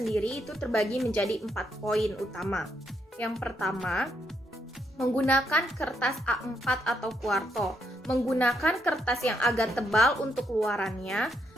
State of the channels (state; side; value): normal; both; correlation 0.77